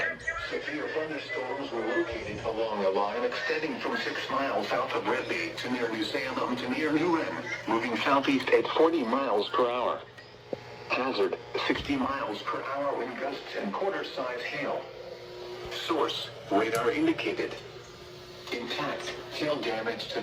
severe thunderstorms were located along a line extending from 6 miles south of Red Bay to near New Salem to near New Wren, moving southeast at 40 miles per hour. Hazard, 60 miles per hour wind gusts and quarter-size hail. Source, radar indicated. Intact, hail damage to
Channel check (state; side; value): identical; both; correlation 1.00